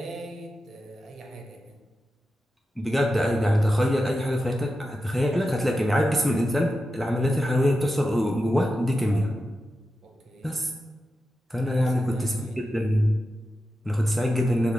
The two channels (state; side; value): normal; both; correlation 0.91